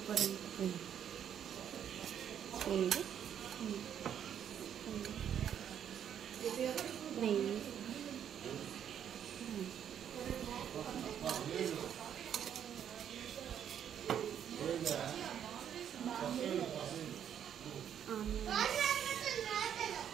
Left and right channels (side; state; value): left; quieter; 9.2 dB